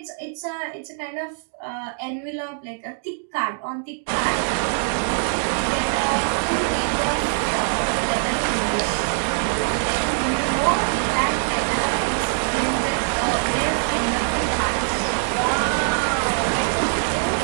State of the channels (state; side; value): silent; left; digital silence